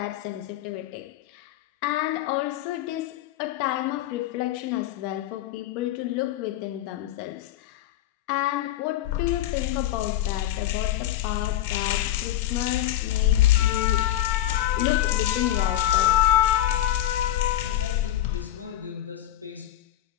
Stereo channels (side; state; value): right; quieter; 13.3 dB